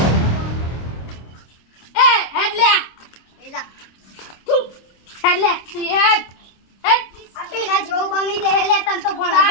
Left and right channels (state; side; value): late; right; 26 ms